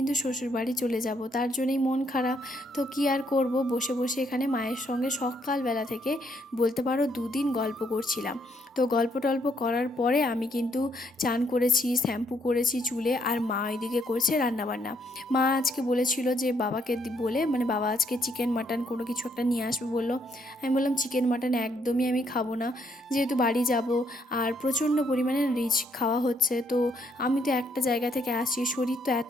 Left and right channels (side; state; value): both; normal; correlation 0.72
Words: শ্বশুরবাড়ি চলে যাব, তার জন্যই মন খারাপ। তো কি আর করব, বসে বসে এখানে মায়ের সঙ্গে সকালবেলা থেকে বলতে পারো 2 দিন গল্প করছিলাম। তো গল্প টল্প করার পরে আমি কিন্তু চান করেছি, শ্যাম্পু করেছি চুলে, আর মা ওইদিকে করছে রান্নাবান্না। মা আজকে বলেছিল যে বাবাকে বলে, মানে বাবা আজকে চিকেন মাটন কোনো কিছু একটা নিয়ে আসবে বললো। আমি বললাম চিকেন মাটন একদমই আমি খাবো না, যেহেতু বাড়ি যাব আর প্রচণ্ড পরিমাণে রিচ খাওয়া হচ্ছে, তো আমি তো একটা জায়গা থেকে আসছি, শরীর তো